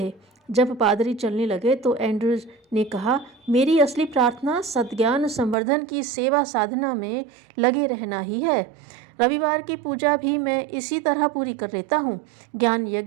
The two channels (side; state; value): left; drops out; at 5.6 s